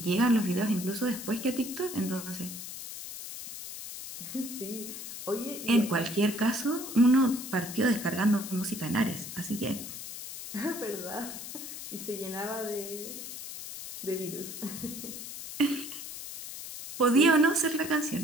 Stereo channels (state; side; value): noise; left; hiss, 9 dB below the sound